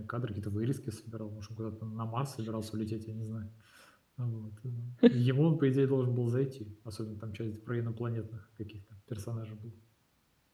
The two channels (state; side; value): identical; both; correlation 1.00